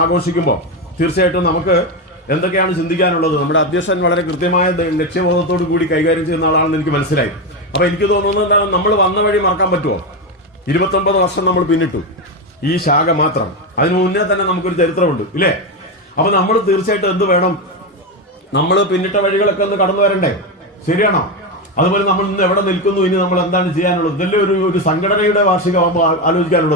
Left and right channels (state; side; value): normal; both; correlation 0.12